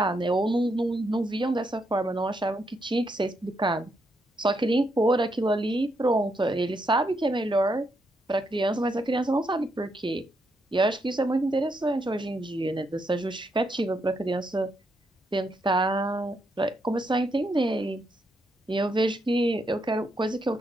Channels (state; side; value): normal; both; correlation 0.79